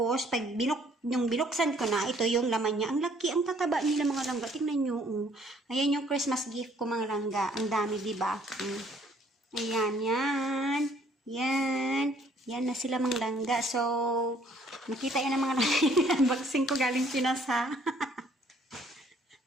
pag binuksan ko na, ito yung laman niya. Ang laki, ang tataba nila mga langga. Tingnan nyo. Ayan yung Christmas gift ko mga langga. Ang dami, diba? Ayan, yan. Yan. Yan na sila mga langga. So, nakita yan ng mga langga. Unboxing ko galing Pinas ha.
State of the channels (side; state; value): both; normal; correlation 0.62